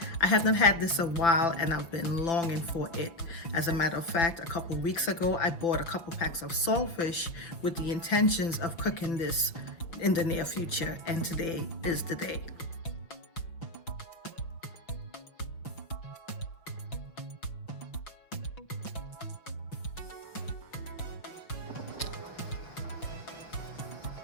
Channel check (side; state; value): right; late; 5.9 ms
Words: I have not had this a while and I've been longing for it. As a matter of fact, a couple weeks ago, I bought a couple packs of saltfish with the intentions of cooking this in the near future, and today is the day.